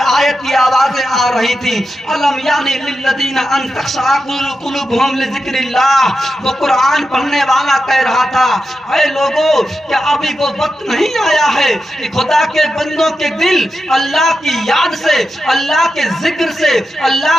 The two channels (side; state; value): both; normal; correlation 0.89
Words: کی آوازیں آ رہی تھی، الم یعنی للذین ان تخشع قلوبہم لذکر اللہ، وہ قرآن پڑھنے والا کہہ رہا تھا اے لوگو کیا ابھی وہ وقت نہیں آیا ہے کہ خدا کے بندوں کے دل اللہ کی یاد سے، اللہ کے ذکر سے، اللہ